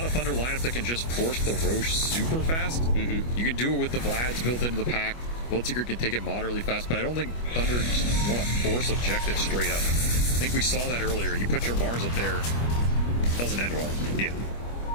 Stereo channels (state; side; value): late; right; 25 ms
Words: a Thunder lineup that can just force the Roche super fast. You can do it with the Vlads built into the pack. Bloodseeker can take it moderately fast, but I don't think Thunder just want to force objectives straight up. I think we saw that earlier. You put your Mars up there, it doesn't end well. Yeah.